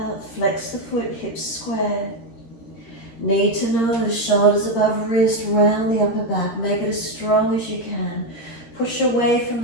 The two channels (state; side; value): late; right; 13 ms